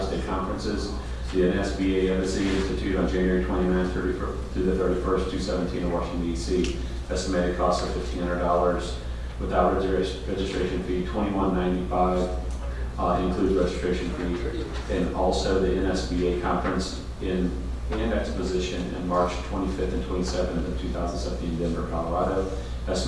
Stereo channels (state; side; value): identical; both; correlation 1.00